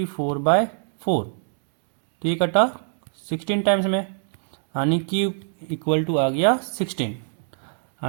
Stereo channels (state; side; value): silent; left; digital silence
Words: तो ये कटा 16 टाइम्स में, यानी q इक्वल टू आ गया 16